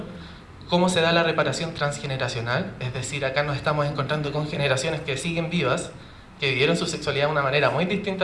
cómo se da la reparación transgeneracional. Es decir, acá nos estamos encontrando con generaciones que siguen vivas, que vivieron su sexualidad de una manera muy distinta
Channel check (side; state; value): both; identical; correlation 1.00